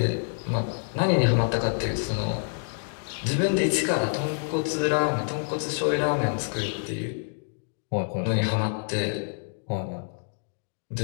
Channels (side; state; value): right; silent; 60 dB below the other